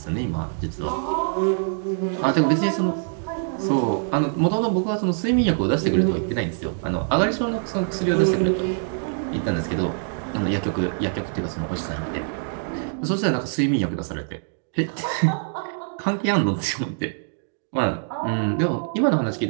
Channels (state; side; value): silent; left; digital silence